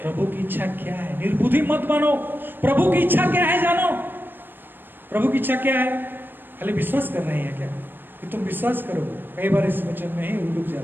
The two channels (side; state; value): left; late; 0.095 ms